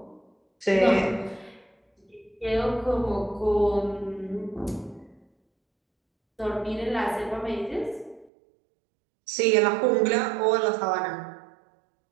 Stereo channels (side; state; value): left; drops out; at 8.3 s